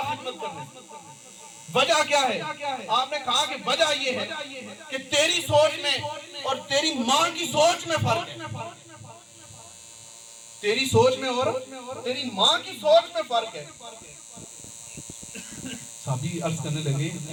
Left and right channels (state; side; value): identical; both; correlation 1.00